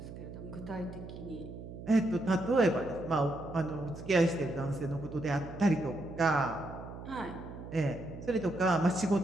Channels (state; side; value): noise; right; hum, 12 dB below the sound